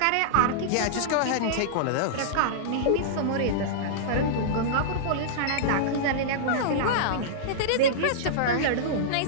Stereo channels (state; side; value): different; both; correlation -0.02